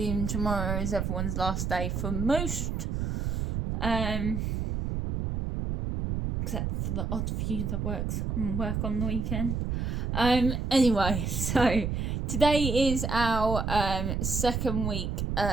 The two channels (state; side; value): noise; right; rumble, 1 dB below the sound